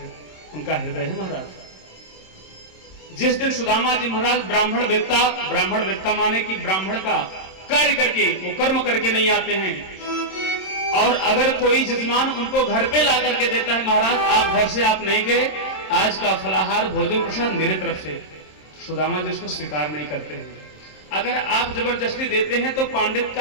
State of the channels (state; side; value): late; right; 27 ms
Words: उनका हृदय है महाराज। जिस दिन सुदामा जी महाराज ब्राह्मण वेत्ता माने कि ब्राह्मण का कार्य करके, वो कर्म करके नहीं आते हैं, और अगर कोई जजमान उनको घर पे ला करके देता है, महाराज आप घर से आप नहीं गए, आज का फलाहार भोजन प्रसाद मेरे तरफ से, सुदामा जी उसको स्वीकार नहीं करते हैं। अगर आप जबरदस्ती देते हैं तो पांडित